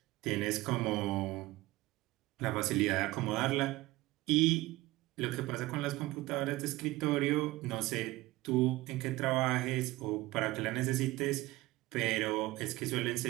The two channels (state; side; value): quieter; left; 19.1 dB